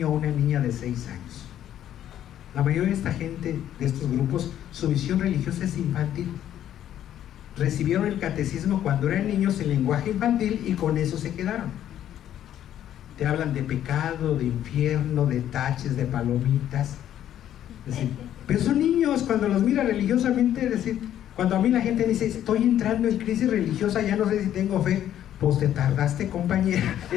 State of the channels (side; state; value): right; quieter; 11.2 dB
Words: o una niña de 6 años. La mayoría de esta gente, de estos grupos, su visión religiosa es infantil. Recibieron el catecismo cuando eran niños en lenguaje infantil y con eso se quedaron. Te hablan de pecado, de infierno, de taches, de palomitas. Es decir, pero son niños, cuando los mira religiosamente, es decir, cuando a mí la gente dice, estoy entrando en crisis religiosa, ya no sé si tengo fe. Pues te tardaste, compañera.